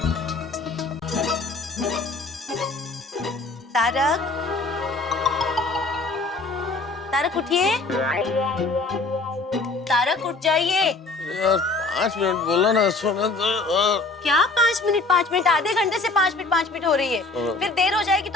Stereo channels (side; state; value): right; quieter; 3.5 dB